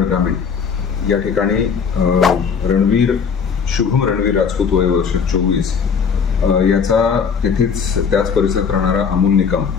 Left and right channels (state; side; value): quieter; right; 6.3 dB